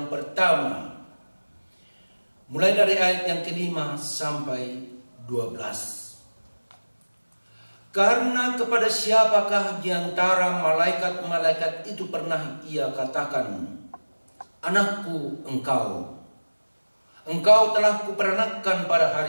pertama, mulai dari ayat yang ke-5 sampai 12. Karena kepada siapakah di antara malaikat-malaikat itu pernah ia katakan, "Anakku engkau telah kuperanakkan pada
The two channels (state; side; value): inverted; both; correlation -1.00